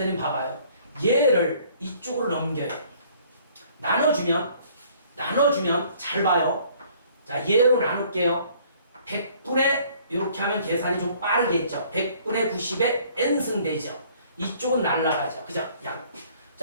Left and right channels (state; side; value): inverted; both; correlation -0.57